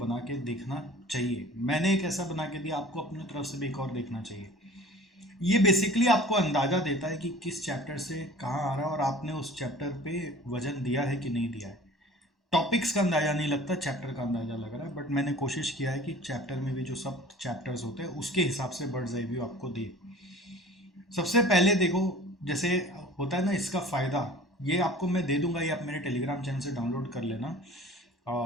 के देखना चाहिए। मैंने एक ऐसा बना के दिया, आपको अपनी तरफ से भी एक और देखना चाहिए। ये बेसिकली आपको अंदाजा देता है कि किस चैप्टर से कहाँ आ रहा है और आपने उस चैप्टर पे वजन दिया है कि नहीं दिया है। टॉपिक्स का अंदाजा नहीं लगता, चैप्टर का अंदाजा लग रहा है, बट मैंने कोशिश किया है कि चैप्टर में भी जो सब चैप्टर्स होते हैं उसके हिसाब से बर्ड्स आई व्यू आपको दे। सबसे पहले देखो, जैसे होता है ना, इसका फ़ायदा ये आपको मैं दे दूंगा, ये आप मेरे टेलीग्राम चैनल से डाउनलोड कर लेना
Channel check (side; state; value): both; normal; correlation 0.45